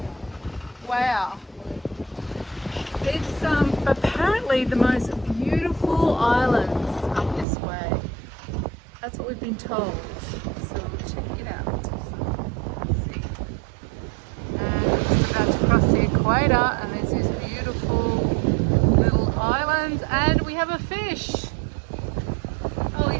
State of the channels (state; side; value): drops out; left; at 7.5 s